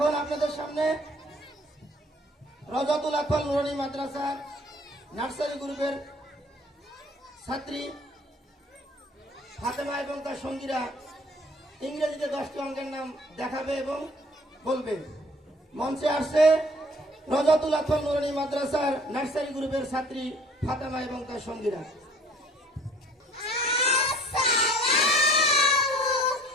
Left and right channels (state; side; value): normal; both; correlation 0.53